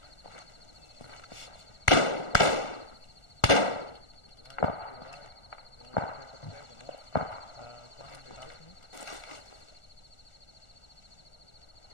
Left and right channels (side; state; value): right; late; 1.4 ms